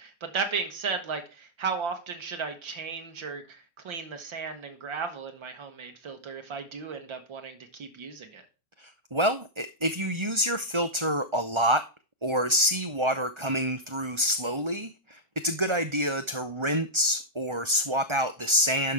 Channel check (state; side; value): late; left; 1.3 ms